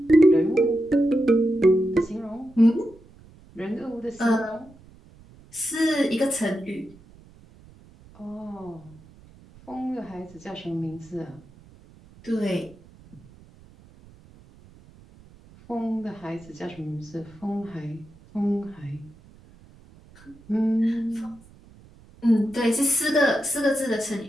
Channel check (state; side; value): noise; right; rumble, 24 dB below the sound